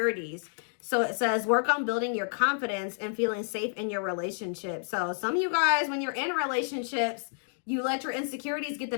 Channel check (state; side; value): silent; right; digital silence